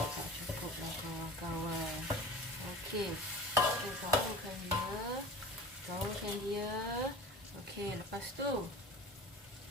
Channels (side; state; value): both; normal; correlation 0.37